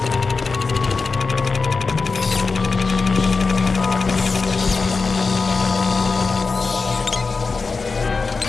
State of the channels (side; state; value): right; quieter; 4.4 dB